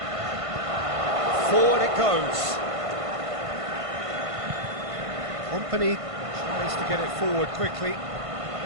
Forward it goes. Company tries to get it forward quickly.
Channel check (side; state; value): left; late; 1.5 ms